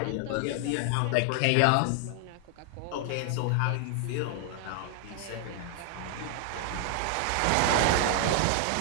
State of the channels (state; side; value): different; both; correlation 0.00